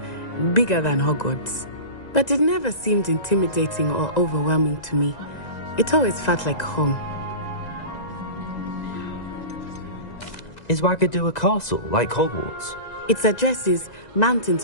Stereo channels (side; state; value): right; late; 1.9 ms